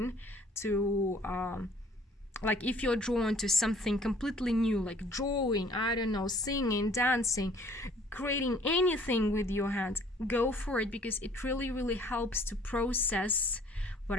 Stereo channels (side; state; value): both; normal; correlation 0.56